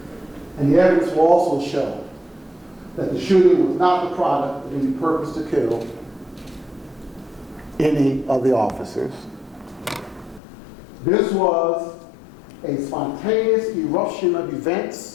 And the evidence will also show that the shooting was not the product of any purpose to kill any of the officers. This was a spontaneous eruption of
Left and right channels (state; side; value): drops out; right; at 10.4 s